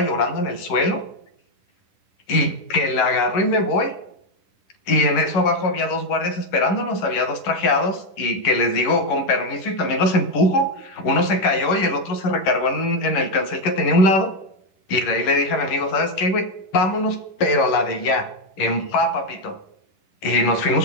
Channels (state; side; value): late; right; 10 ms